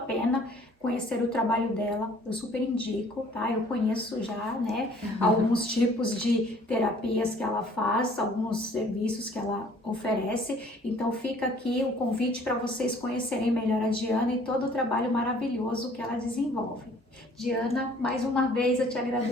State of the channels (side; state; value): both; normal; correlation 0.56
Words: conhecer o trabalho dela. Eu super indico, tá? Eu conheço já, né, alguns tipos de terapias que ela faz, alguns serviços que ela oferece. Então fica aqui o convite para vocês conhecerem melhor a Diana e todo o trabalho maravilhoso que ela desenvolve. Diana, mais uma vez eu te